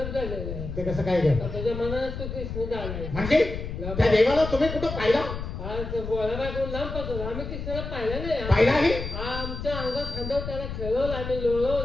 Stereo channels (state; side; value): noise; left; rumble, 7 dB below the sound